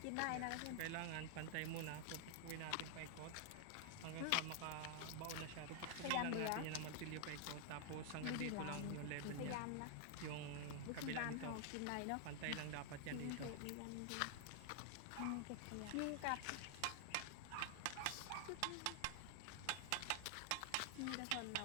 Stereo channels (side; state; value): both; different; correlation 0.00